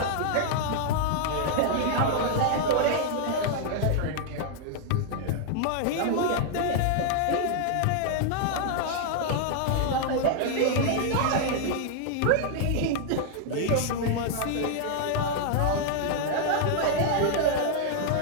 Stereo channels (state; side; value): different; both; correlation -0.01